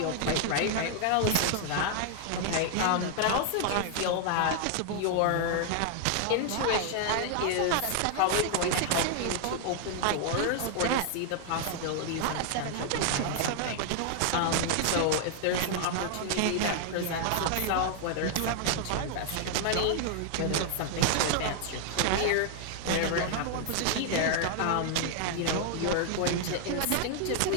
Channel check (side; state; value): both; different; correlation 0.00